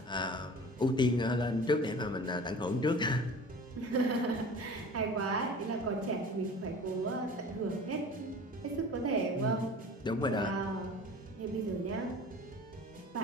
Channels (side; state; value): both; normal; correlation 0.41